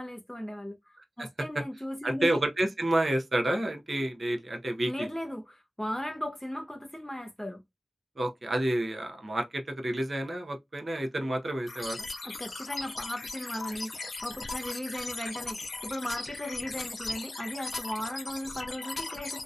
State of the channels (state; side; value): normal; both; correlation 0.95